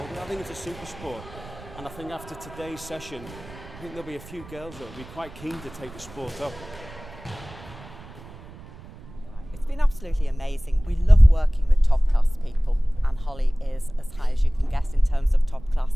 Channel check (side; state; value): right; noise; rumble, 18 dB below the sound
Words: in. I think it's a super sport. And I think after today's session, I think there'll be a few girls that will be quite keen to take the sport up. It's been absolutely amazing. We love working with top class people, and Holly is as high as you can get in terms of top